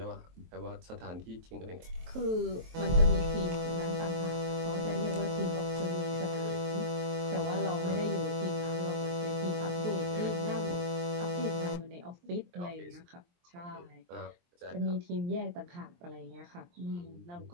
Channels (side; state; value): left; late; 23 ms